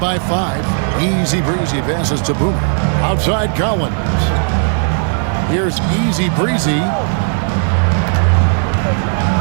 5. Easy Breezy passes to Boomer. Outside Collins. Here's Easy Breezy.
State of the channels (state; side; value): silent; left; 55 dB below the other